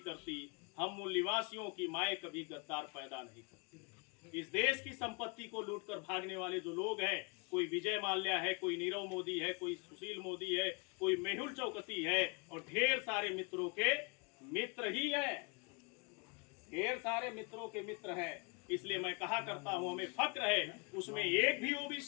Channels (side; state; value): right; quieter; 32.9 dB